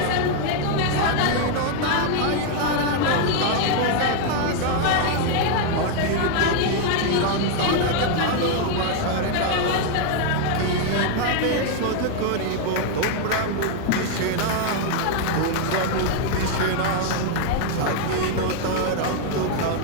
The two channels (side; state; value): both; different; correlation 0.00